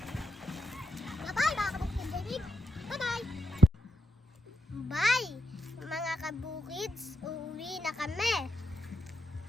Bye! Mga kabukids, uuwi na kami.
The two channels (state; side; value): normal; both; correlation 0.82